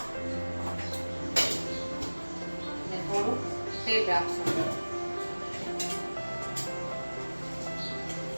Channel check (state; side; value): inverted; both; correlation -1.00